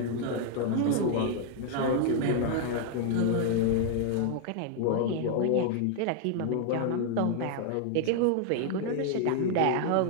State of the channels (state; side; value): different; both; correlation 0.00